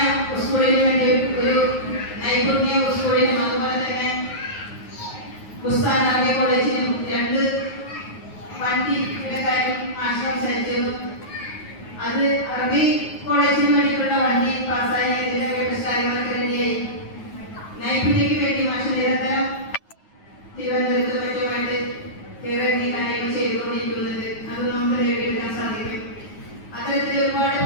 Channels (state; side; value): late; right; 9.5 ms